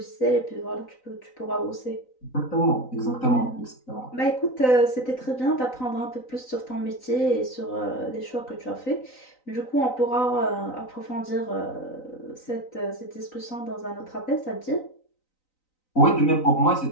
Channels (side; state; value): right; late; 3.9 ms